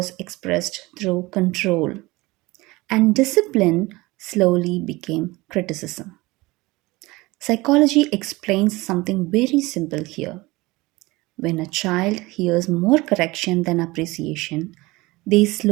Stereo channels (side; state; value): left; quieter; 21.5 dB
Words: expressed through control, and discipline slowly became criticism. Psychology explains something very simple here. When a child hears more correction than appreciation, they